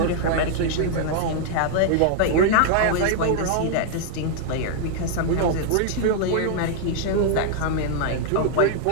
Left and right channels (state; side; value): different; both; correlation -0.01